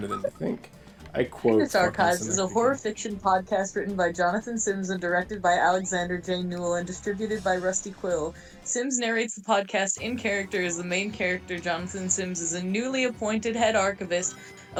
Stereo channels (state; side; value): identical; both; correlation 1.00